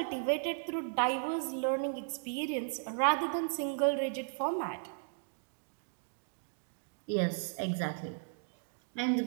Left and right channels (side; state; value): left; silent; digital silence